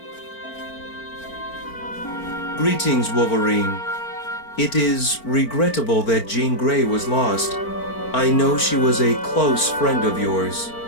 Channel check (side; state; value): right; late; 4.4 ms